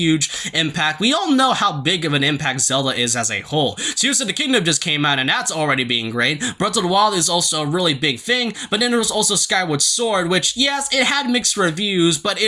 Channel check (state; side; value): identical; both; correlation 1.00